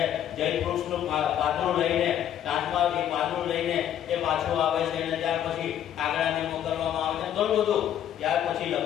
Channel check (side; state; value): right; quieter; 10.4 dB